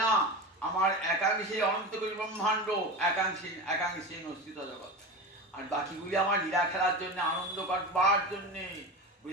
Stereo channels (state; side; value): normal; both; correlation 0.26